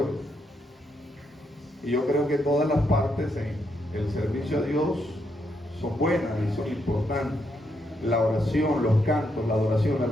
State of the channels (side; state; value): both; normal; correlation 0.78